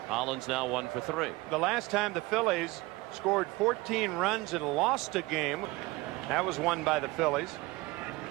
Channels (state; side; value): quieter; left; 21.3 dB